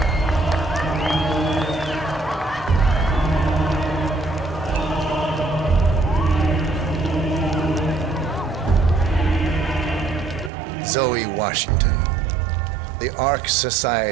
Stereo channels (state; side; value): drops out; left; at 10.5 s